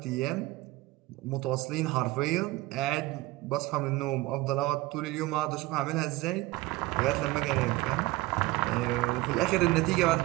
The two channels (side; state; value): left; quieter; 19.0 dB